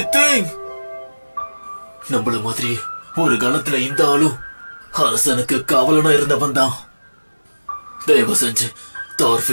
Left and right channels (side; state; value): both; inverted; correlation -1.00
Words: தேங் நம்மள மாதிரி ஒரு காலத்துல இந்த ஆளும் அரசனுக்கு காவலனா இருந்தவன் தான். தயவு செஞ்சு